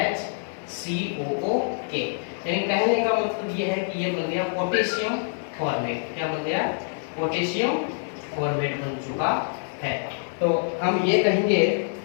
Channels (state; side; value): silent; right; 58 dB below the other